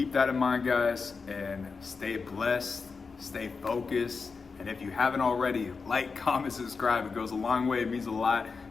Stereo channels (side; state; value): right; quieter; 4.8 dB